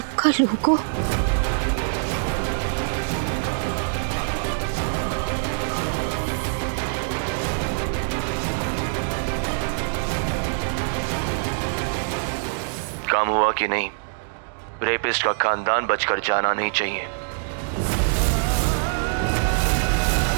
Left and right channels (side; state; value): left; silent; digital silence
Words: का लोगो। काम हुआ कि नहीं? रेपिस्ट का खानदान बचकर जाना नहीं चाहिए।